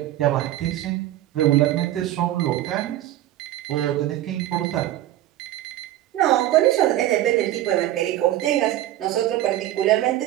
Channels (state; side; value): quieter; left; 13.8 dB